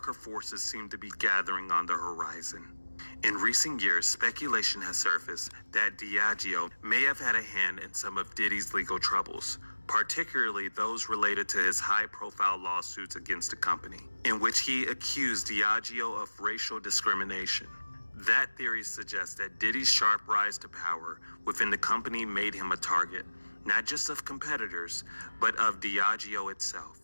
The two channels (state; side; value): inverted; both; correlation -1.00